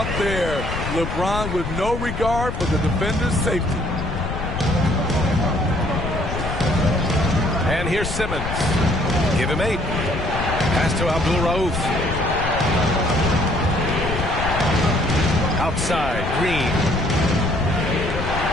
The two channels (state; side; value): noise; left; rumble, 5 dB below the sound